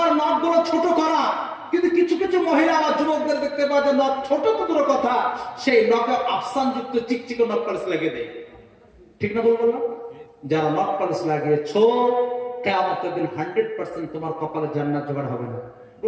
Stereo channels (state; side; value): identical; both; correlation 1.00